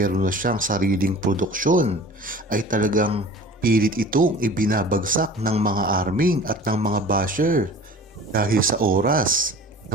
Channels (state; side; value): normal; both; correlation 0.43